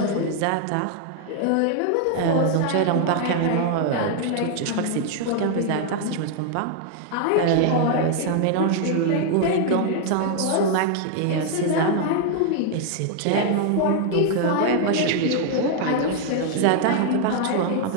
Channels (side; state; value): both; different; correlation 0.00